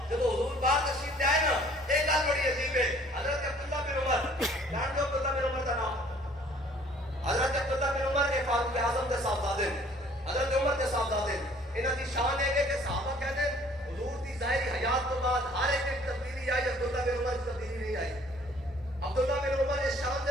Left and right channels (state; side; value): normal; both; correlation 0.56